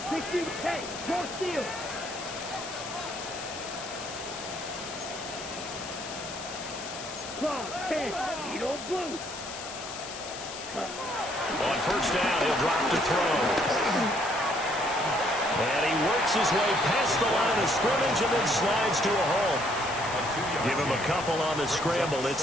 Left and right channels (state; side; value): noise; left; hiss, 10 dB below the sound